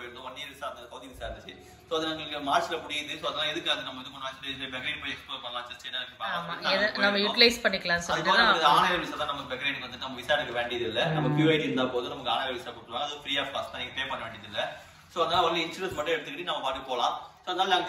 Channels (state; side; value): identical; both; correlation 1.00